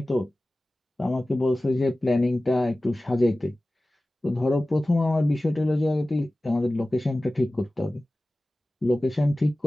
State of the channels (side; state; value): both; normal; correlation 0.97